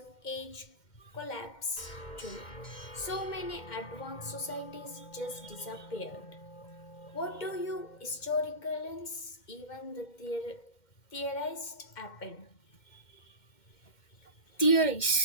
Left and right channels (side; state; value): right; late; 2.1 ms